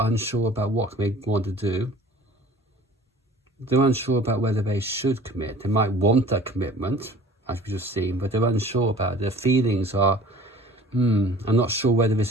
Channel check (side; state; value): both; normal; correlation 0.47